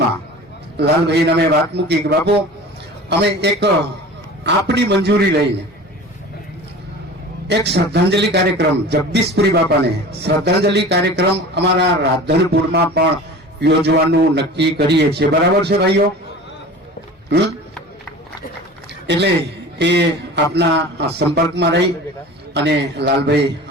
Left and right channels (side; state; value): both; normal; correlation 0.38